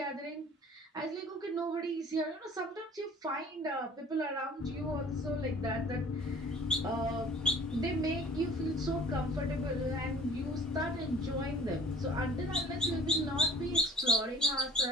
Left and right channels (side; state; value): both; normal; correlation 0.48